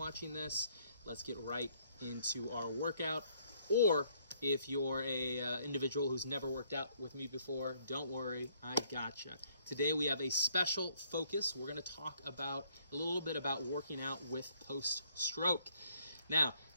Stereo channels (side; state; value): both; inverted; correlation -0.65